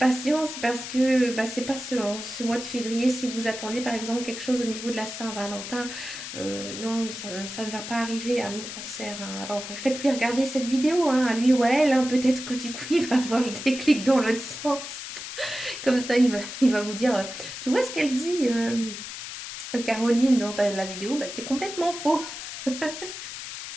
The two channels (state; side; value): noise; left; hiss, 9 dB below the sound